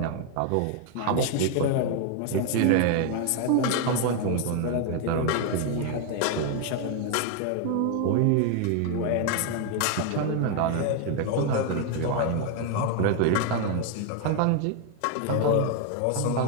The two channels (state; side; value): different; both; correlation 0.01